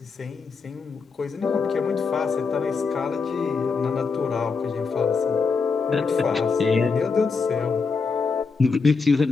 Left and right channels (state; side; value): quieter; right; 4.9 dB